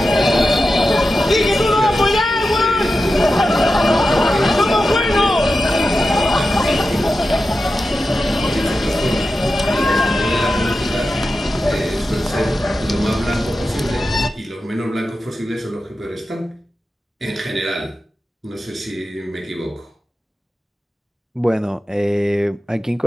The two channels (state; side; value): normal; both; correlation 0.91